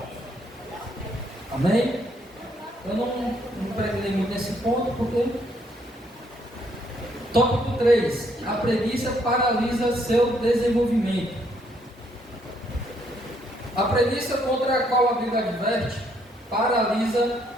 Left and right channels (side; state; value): both; normal; correlation 0.70